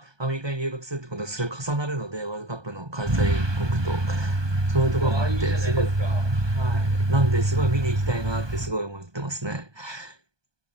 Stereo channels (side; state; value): left; late; 1.2 ms